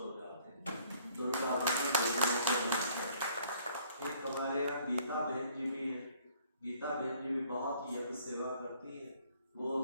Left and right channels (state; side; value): inverted; both; correlation -0.61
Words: जाते हैं। दुर्गा बहन देवियों को नमस्कार। एक हमारे यहाँ गीता बहन जी भी हैं। गीता बहन जी भी बहुत यज्ञ सेवा करती है। वो